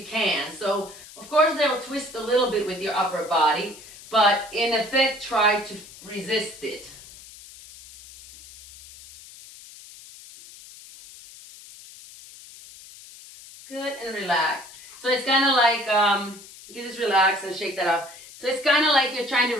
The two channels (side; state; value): left; noise; hiss, 18 dB below the sound